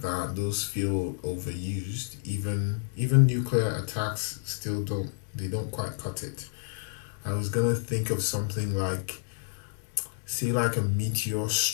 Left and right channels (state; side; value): silent; right; digital silence